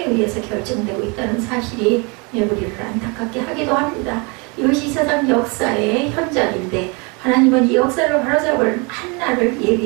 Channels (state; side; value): quieter; left; 30.5 dB